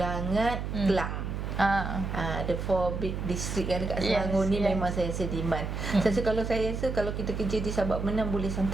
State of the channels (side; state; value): right; noise; hum, 4 dB below the sound